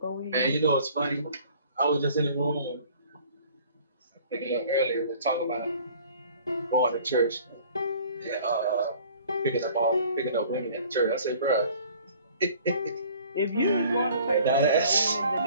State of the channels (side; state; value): both; inverted; correlation -0.52